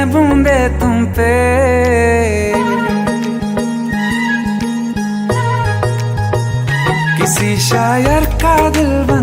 बूंदे तुम पे। किसी शायर का दिल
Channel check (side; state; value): both; identical; correlation 1.00